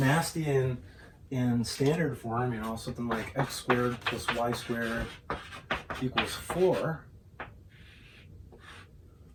in standard form, you know, something like x squared plus y squared equals 4.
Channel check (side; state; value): both; identical; correlation 1.00